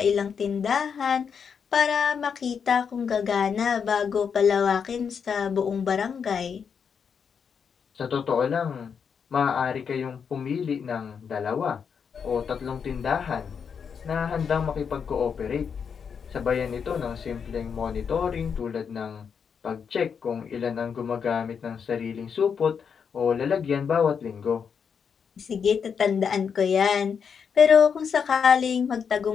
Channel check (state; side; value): quieter; right; 6.7 dB